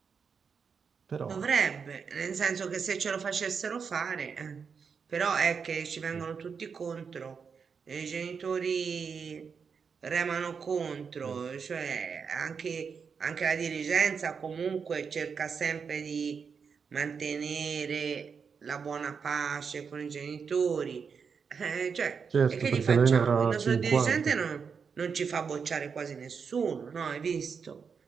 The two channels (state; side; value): quieter; left; 6.0 dB